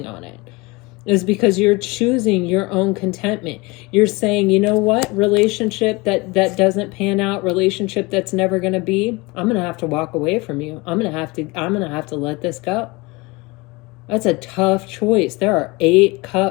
on it. Is because you're choosing your own contentment. You're saying, you know what, relationship that doesn't pan out, relationship that's never going to be, I'm going to have to walk away from you. I'm going to have to let this go. That's a tough choice. There are 8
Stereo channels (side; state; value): right; quieter; 24.6 dB